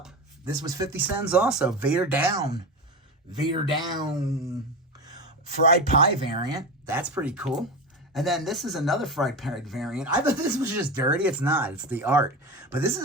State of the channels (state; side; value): normal; both; correlation 0.22